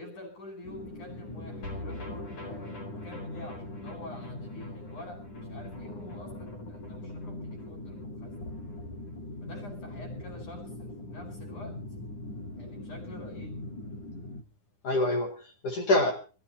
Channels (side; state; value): right; late; 9.9 ms